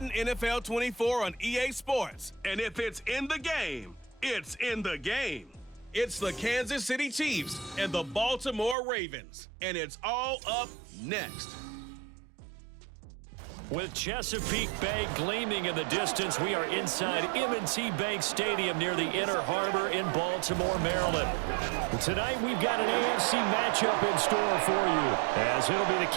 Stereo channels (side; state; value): left; drops out; at 8.8 s